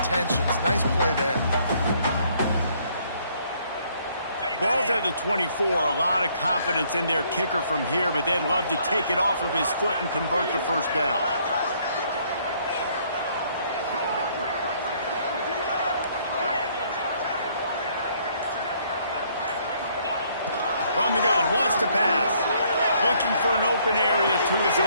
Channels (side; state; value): both; inverted; correlation -0.65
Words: Nice play there. Ball's at the 24. A lot of confidence in their kicker from here, but they'd love to take it off of his foot and convert the first down. From the gun, wants to pass. Looking for an open area to his